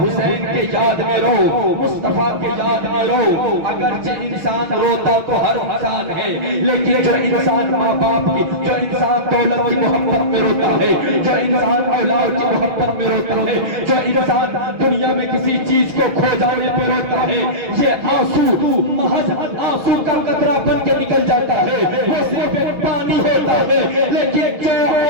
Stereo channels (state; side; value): late; left; 6.1 ms